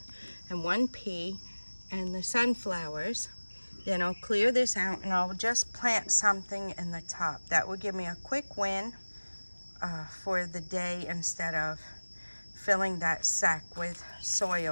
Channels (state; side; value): inverted; both; correlation -1.00